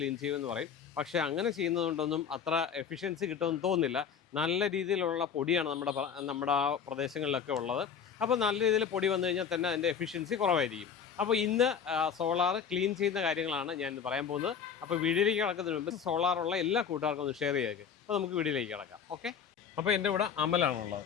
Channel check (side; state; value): right; quieter; 7.2 dB